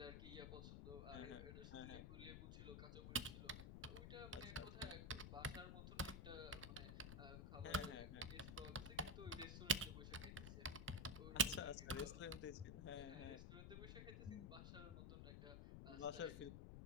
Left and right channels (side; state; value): left; noise; rumble, 6 dB below the sound